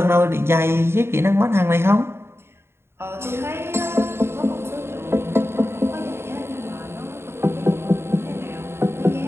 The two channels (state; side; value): late; left; 0.12 ms